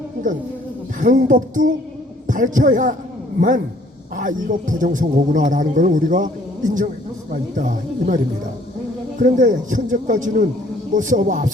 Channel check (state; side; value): normal; both; correlation 0.60